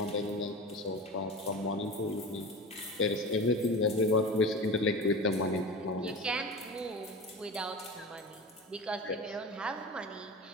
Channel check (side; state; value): both; normal; correlation 0.31